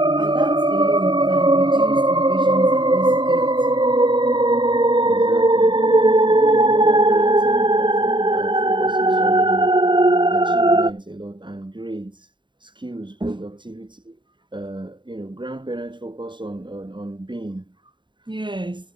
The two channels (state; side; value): late; left; 0.23 ms